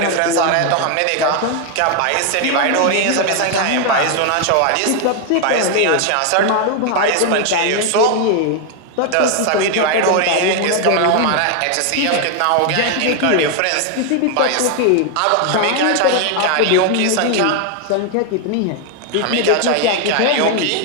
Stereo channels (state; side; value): different; both; correlation 0.00